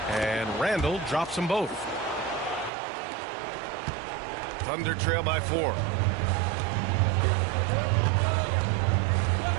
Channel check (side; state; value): left; drops out; at 2.7 s